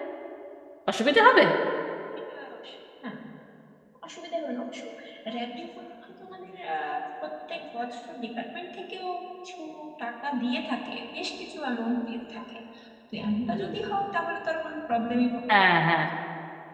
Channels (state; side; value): identical; both; correlation 1.00